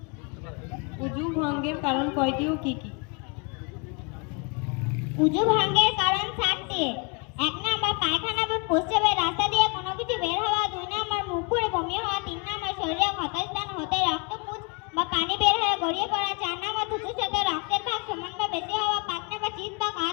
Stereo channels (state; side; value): quieter; right; 33.1 dB